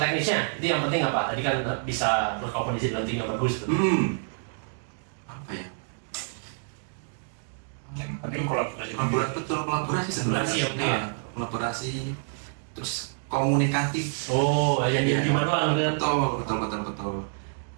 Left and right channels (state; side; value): silent; left; digital silence